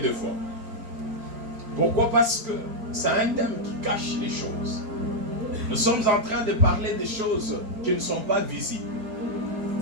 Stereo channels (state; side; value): late; left; 4.4 ms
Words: fois. Pourquoi? Parce que c'est un thème qui cache les choses. Nous sommes en train de parler des choses qui ne sont pas visibles.